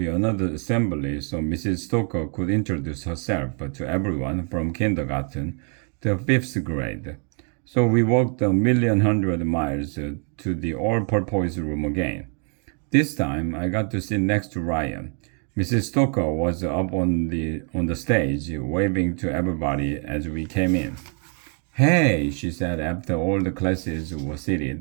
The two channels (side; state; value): left; quieter; 39.6 dB